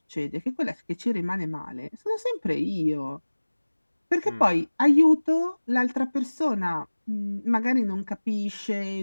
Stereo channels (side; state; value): both; inverted; correlation -1.00